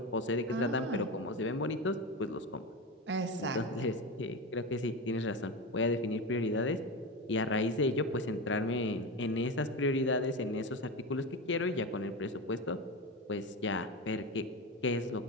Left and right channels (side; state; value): both; normal; correlation 0.20